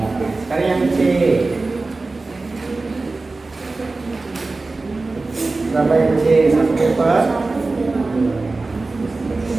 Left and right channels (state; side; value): quieter; left; 3.5 dB